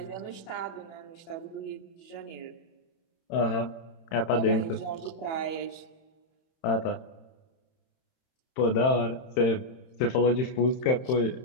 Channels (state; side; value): late; right; 31 ms